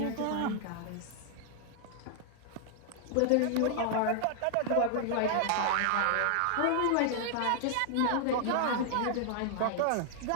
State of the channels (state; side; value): different; both; correlation -0.01